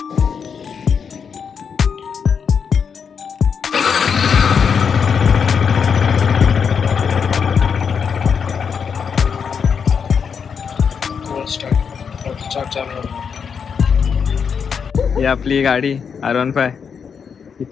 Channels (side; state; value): right; quieter; 6.5 dB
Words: आपली गाडी R15 ही